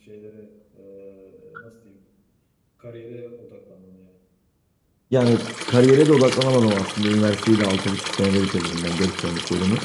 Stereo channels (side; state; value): both; identical; correlation 1.00